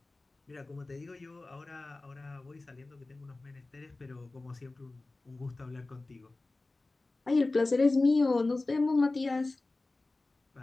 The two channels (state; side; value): quieter; right; 3.2 dB